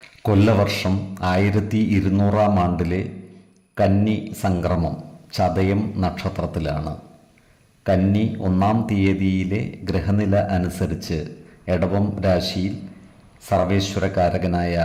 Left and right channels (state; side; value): identical; both; correlation 1.00